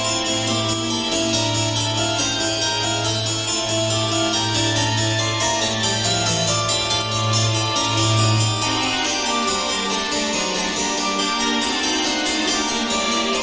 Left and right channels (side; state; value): both; identical; correlation 1.00